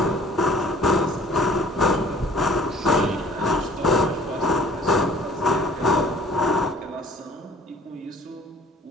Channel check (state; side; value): normal; both; correlation 0.53